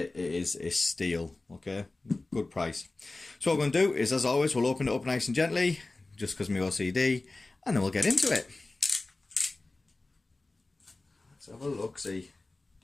it is a steal, okay, good price. So what we're going to do is, as always, we'll open it up nice and gently, just because my OCD, and then we'll get into it. Let's have a look, see.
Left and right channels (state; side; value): quieter; right; 3.2 dB